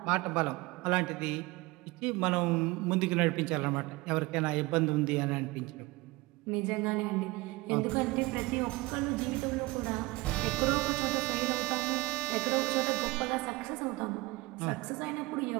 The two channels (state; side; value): quieter; left; 21.4 dB